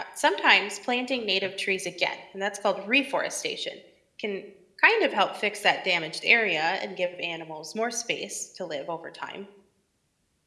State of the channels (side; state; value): both; identical; correlation 1.00